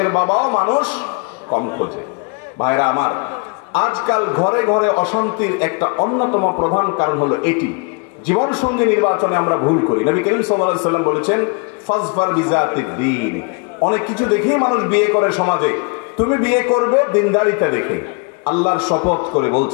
বাবাও মানুষ কম খোঁজে। ভাইরা আমার, আজকাল ঘরে ঘরে অশান্তির একটা অন্যতম প্রধান কারণ হলো এটি, জীবন সঙ্গী নির্বাচনে আমরা ভুল করি। নবী করিম সাল্লাল্লাহু আলাইহি ওয়াসাল্লাম বলেছেন, ফাজফার বিজাতিদ দ্বীন। অনেক কিছু দেখেই মানুষ বিয়ে করে সমাজে, তুমি বিয়ে করবে দিনদারিতা দেখে। আল্লাহর শপথ করে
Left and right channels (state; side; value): quieter; right; 34.0 dB